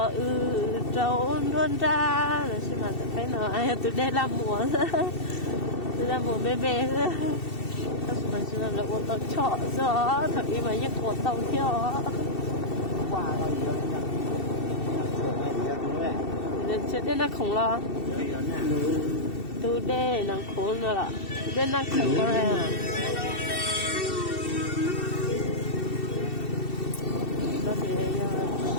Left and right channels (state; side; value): late; right; 2.7 ms